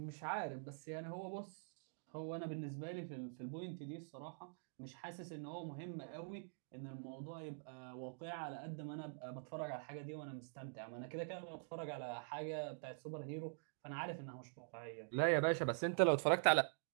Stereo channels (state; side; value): silent; left; digital silence